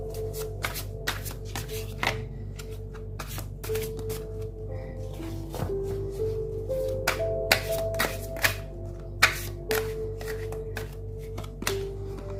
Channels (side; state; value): both; identical; correlation 1.00